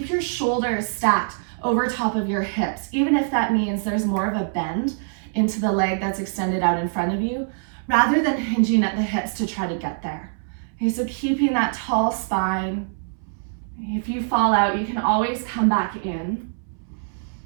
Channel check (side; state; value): left; silent; 63 dB below the other